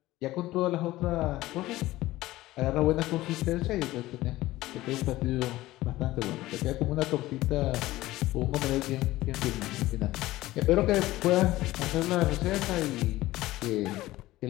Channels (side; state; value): right; quieter; 17.1 dB